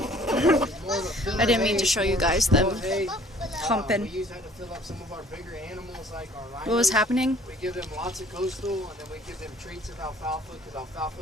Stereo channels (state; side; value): normal; both; correlation 0.55